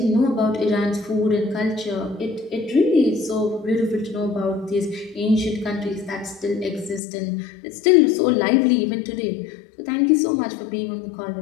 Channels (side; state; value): right; drops out; at 7.0 s